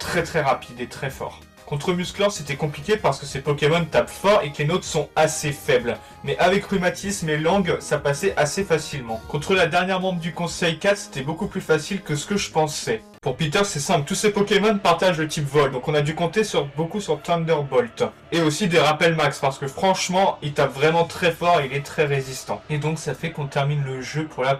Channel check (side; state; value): both; identical; correlation 1.00